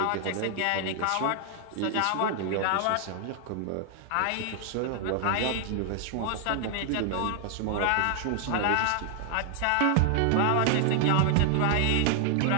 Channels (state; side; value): different; both; correlation 0.00